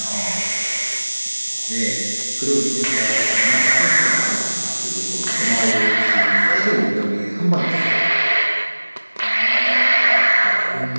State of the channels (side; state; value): both; inverted; correlation -1.00